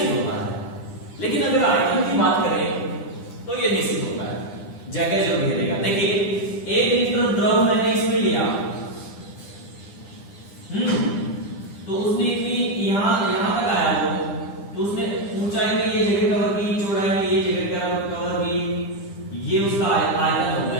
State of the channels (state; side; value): late; right; 10 ms